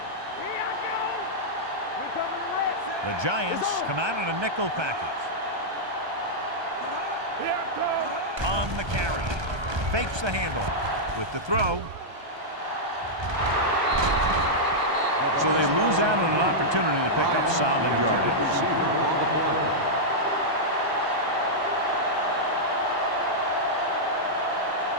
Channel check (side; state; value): left; late; 1.2 ms